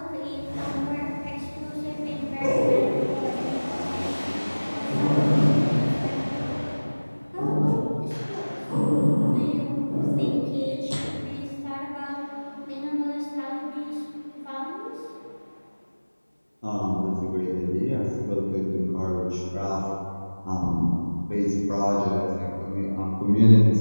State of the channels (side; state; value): both; inverted; correlation -1.00